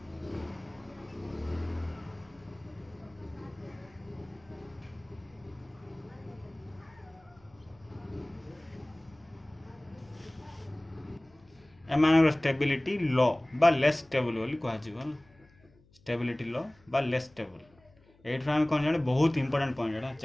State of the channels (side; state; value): left; noise; hum, 29 dB below the sound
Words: एमान स्टेबिलिटी लो बा लेस स्टेबल बोली कहा जीवो स्टेबिलिटी लो बा लेस स्टेबल एट हम कोन जाने बहुत इंपोर्टेंट पॉइंट एटा